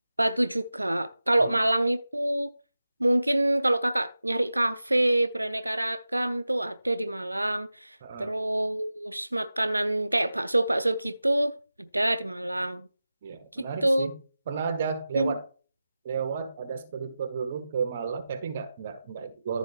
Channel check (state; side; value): inverted; both; correlation -0.94